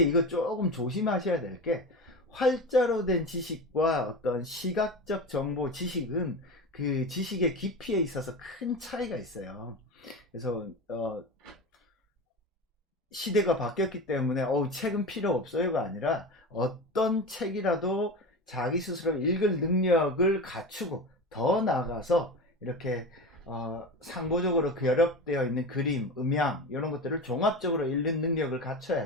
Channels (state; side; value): normal; both; correlation 0.27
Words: 이거 조금 조심하셔야 될 게 활자로 된 지식과 어떤 시각적 정보 지식은 그 지식의 깊이에 있어서 큰 차이가 있어요. 그래서 시대가 바뀌었기 때문에 책은 필요 없어요가 아니라 어떤 책이라도 자기 스스로 읽을 능력을 갖추고 더 나아가서 이렇게 상보적으로 결합되어 있는 그림, 음향 이런 것들을 종합적으로 읽는 능력을